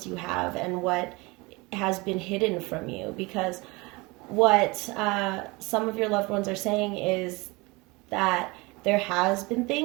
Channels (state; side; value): quieter; left; 24.7 dB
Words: you have and what has been hidden from you, because what some of your loved ones are saying is that there has been